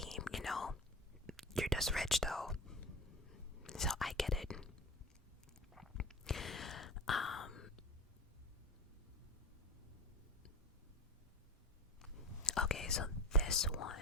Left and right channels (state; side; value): normal; both; correlation 0.31